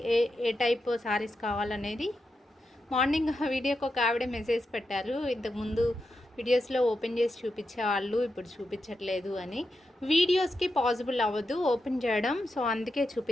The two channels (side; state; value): both; normal; correlation 0.87